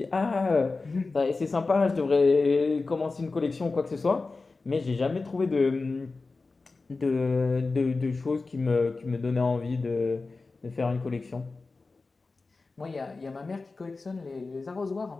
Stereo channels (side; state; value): right; quieter; 3.8 dB